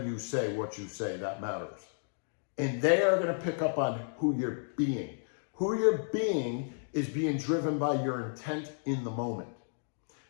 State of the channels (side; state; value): right; silent; digital silence